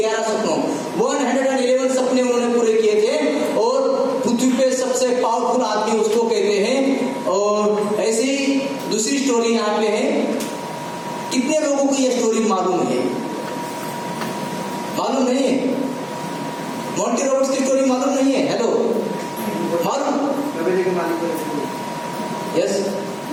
सपनों, 111 सपने उन्होंने पूरे किए थे। और पृथ्वी पे सबसे पावरफुल आदमी उसको कहते हैं। और ऐसी दूसरी स्टोरी यहाँ पे है। कितने लोगों को यह स्टोरी मालूम है? मालूम नहीं है? मॉन्टी रॉबर्ट्स की स्टोरी मालूम नहीं है? हेलो, मालूम? यस,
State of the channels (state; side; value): identical; both; correlation 1.00